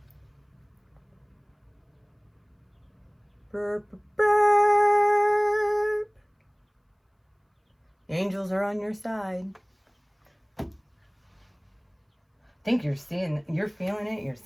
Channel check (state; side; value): identical; both; correlation 1.00